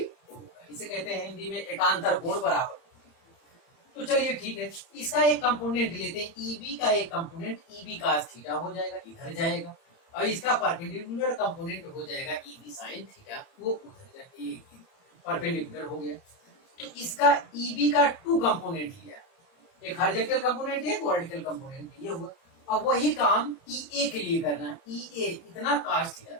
होगा, इसे कहते हैं हिंदी में एकांतर कोण बराबर। तो चलिए ठीक है, इसका एक कंपोनेंट लेते हैं, EB का एक कंपोनेंट EB cos थीटा हो जाएगा, इधर जाएगा, और इसका परपेंडिकुलर कंपोनेंट हो जाएगा EB sin थीटा, वो उधर जाएगा, परपेंडिकुलर हो गया। तो इसका EB का 2 कंपोनेंट लिया, एक हॉरिजॉन्टल कंपोनेंट, एक वर्टिकल कंपोनेंट, ये हुआ। अब वही काम EA के लिए करना है, EA इतना cos थीटा,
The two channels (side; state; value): right; late; 30 ms